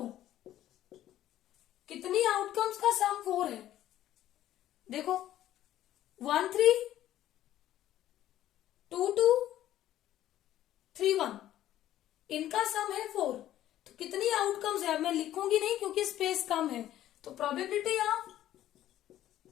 कितनी आउटकम्स का सम 4 है? देखो 1 3 2 2 3 1, इनका सम है 4। तो कितनी आउटकम्स है? मैं लिखूंगी नहीं क्योंकि स्पेस कम है। तो प्रोबेबिलिटी ऑफ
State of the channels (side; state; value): right; quieter; 12.9 dB